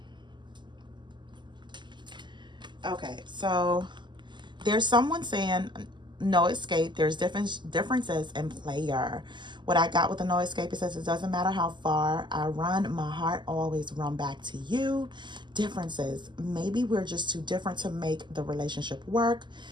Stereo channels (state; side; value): late; left; 0.22 ms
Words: Okay, so there's someone saying no escape. There's differences in player. What I got with the no escape, it says it doesn't matter how far I run, my heart always run back to you. Differences. Maybe we're just too different to make the relationship work.